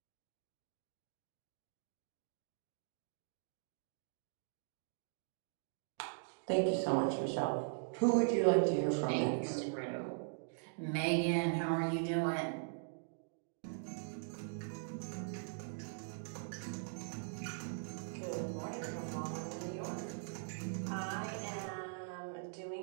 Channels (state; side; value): silent; left; digital silence